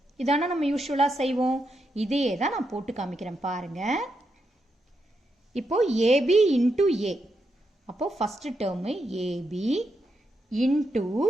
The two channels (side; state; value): both; normal; correlation 0.83